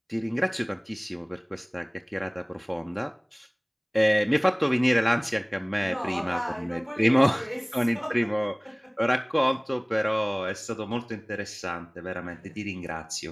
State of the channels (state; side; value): identical; both; correlation 1.00